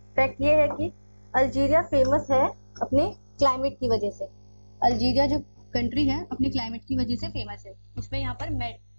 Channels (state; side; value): inverted; both; correlation -1.00